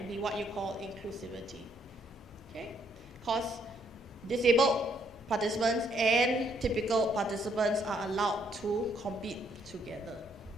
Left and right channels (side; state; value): both; normal; correlation 0.70